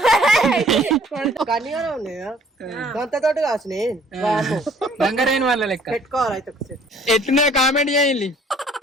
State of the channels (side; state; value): both; normal; correlation 0.57